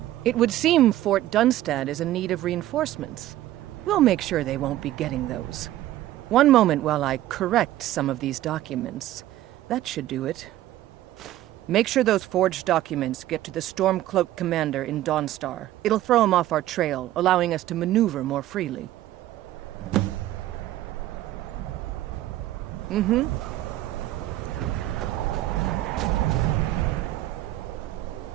It would seem Fort Dunstad is in need of reinforcements. We'll make sure they won't be getting those. One moment while I correct some of these documents. That should do it. Make sure those forged documents get to the Stormcloak commander in Dawnstar. It'll throw him off our trail, allowing us to maneuver more freely. Mm-hmm.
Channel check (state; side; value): quieter; left; 14.3 dB